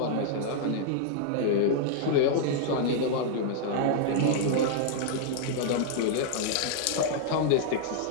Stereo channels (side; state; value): both; different; correlation -0.01